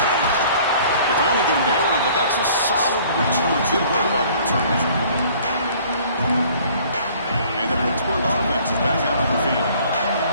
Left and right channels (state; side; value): inverted; both; correlation -0.54